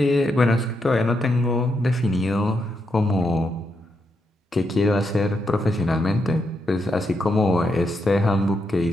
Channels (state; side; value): normal; both; correlation 0.81